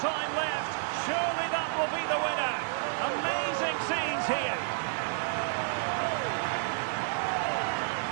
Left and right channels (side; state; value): left; silent; digital silence